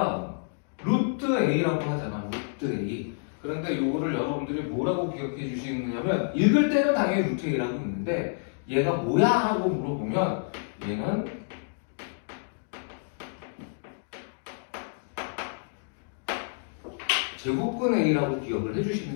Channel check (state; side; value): silent; right; digital silence